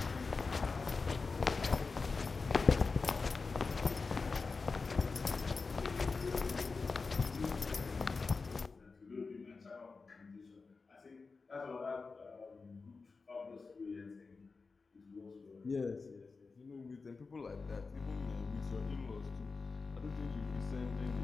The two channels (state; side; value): quieter; right; 4.3 dB